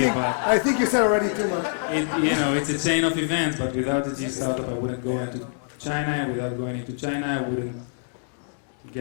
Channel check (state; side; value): silent; right; 62 dB below the other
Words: I think you said already too much. It's a chain of events, but without the G Startup, I wouldn't go into China. Without going into China, I wouldn't